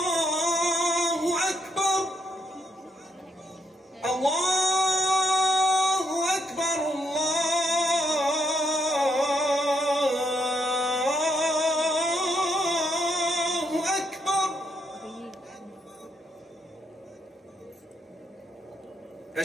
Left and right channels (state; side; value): normal; both; correlation 0.76